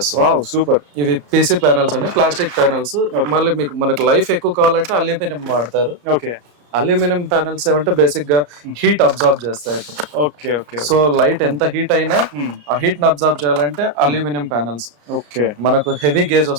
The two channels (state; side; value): late; left; 34 ms